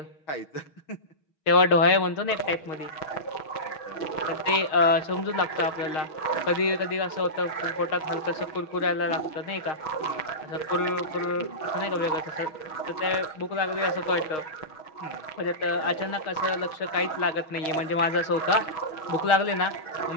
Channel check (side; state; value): right; late; 6.5 ms